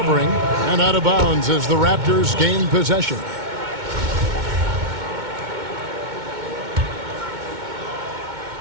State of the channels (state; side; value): late; left; 2.2 ms